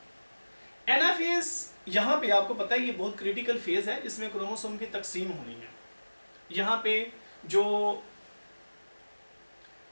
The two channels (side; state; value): both; inverted; correlation -1.00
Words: Anaphase यहाँ पे आपको पता है ये बहुत क्रिटिकल फेज है, इसमें क्रोमोसोम की तकसीम होनी है। यहाँ पे जो